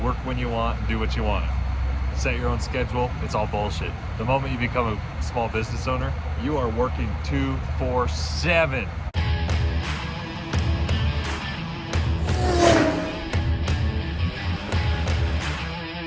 work when you want and do what you want. Set your own schedule. It's all bullshit. The moment you become a small business owner, you are working 24/7.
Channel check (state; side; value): identical; both; correlation 1.00